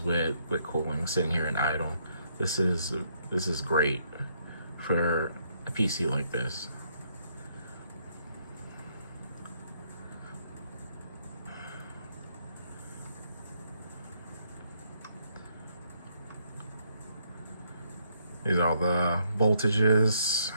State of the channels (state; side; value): inverted; both; correlation -0.73